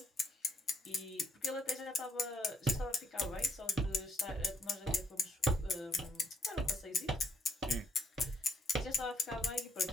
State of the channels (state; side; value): normal; both; correlation 0.69